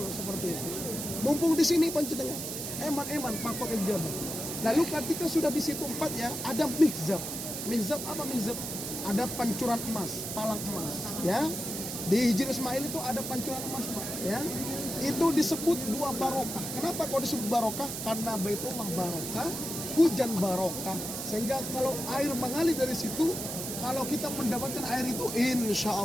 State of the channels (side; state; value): right; noise; hiss, 5 dB below the sound